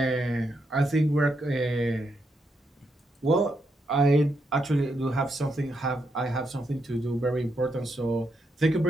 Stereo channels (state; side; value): normal; both; correlation 0.81